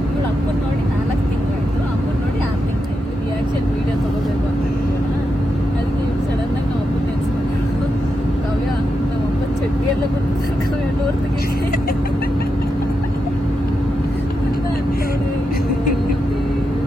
ಇವಳು ಅಪ್ಪನ ನೋಡಿ 4 ತಿಂಗಳಾಯ್ತು, ಅಮ್ಮನ ನೋಡಿ 6 ತಿಂಗಳಾಯ್ತು. ರಿಯಾಕ್ಷನ್ ವೀಡಿಯೋ ತೊಗೋಬೇಕು ಅಂತ ಅದಕ್ಕೆ ಇವ್ರು ಸಡನ್ನಾಗಿ ನಾವು ಅಪ್ಪನ ನೆನೆಸ್ಕೊಂಡು ಕಾವ್ಯ ನಮ್ಮಪ್ಪ ಚಡ್ಡಿ ಎಲ್ಲ ಕೊಡ್ತಾರೆ ಕಾವ್ಯ ನೋಡ್ತೀವಿ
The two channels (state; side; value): normal; both; correlation 0.86